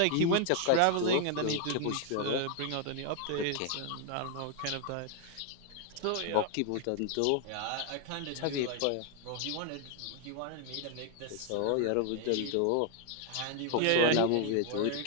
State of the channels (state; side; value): different; both; correlation 0.00